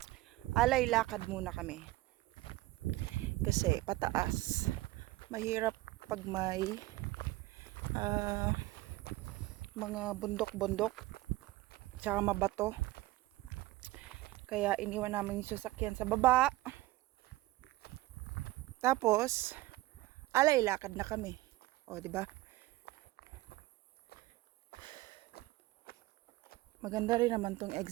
Alay lakad muna kami. Kasi pataas. Mahirap pag may mga bundok-bundok tsaka mabato. Kaya iniwan namin yung sasakyan sa baba. Tapos, alay lakad na kami. O, di ba? Maganda rin naman tong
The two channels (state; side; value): quieter; left; 18.5 dB